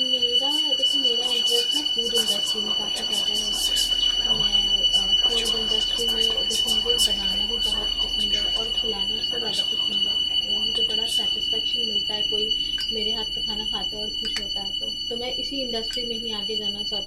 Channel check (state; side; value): identical; both; correlation 1.00